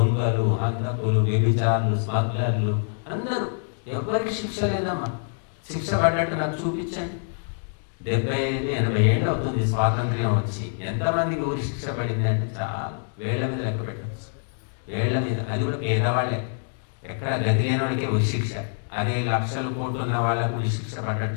హంతకులు, వ్యభిచారులు, స్మగ్లర్లు అందరూ. ఎవరికి శిక్ష లేదమ్మా. శిక్ష పడ్డట్టు నాకు చూపించండి. 75-80 ఏళ్ళు అవుతుంది స్వాతంత్ర్యం వచ్చి, ఎంతమందికి ఊరి శిక్ష పడింది అంటే చాలా వేళ్ళ మీద లెక్క పెట్టచ్చు. వేళ్ళ మీద. అది కూడా పేదవాళ్ళే, ఎక్కడ గతి లేని వాళ్ళకే ఊరి శిక్ష. అదే లక్షల కోట్లు ఉన్న వాళ్ళకు ఊరి శిక్ష పడ్డట్టు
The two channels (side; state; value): right; silent; digital silence